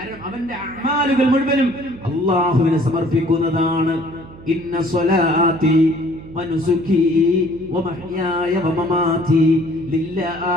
അവന്റെ അമാലുകൾ മുഴുവനും അല്ലാഹുവിനെ സമർപ്പിക്കുന്നതാണ്. ഇന്ന സ്വലാത്തി വനുസുകി വമഹ്യായ വമമാതി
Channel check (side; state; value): right; noise; hum, 18 dB below the sound